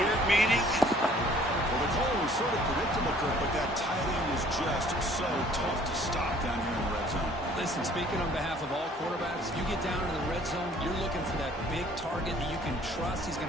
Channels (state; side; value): normal; both; correlation 0.56